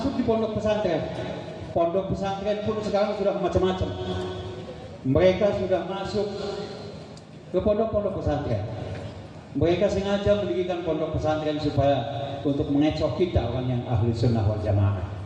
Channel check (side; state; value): both; identical; correlation 1.00